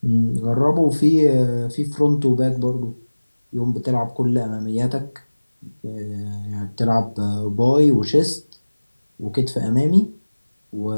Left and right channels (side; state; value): both; inverted; correlation -1.00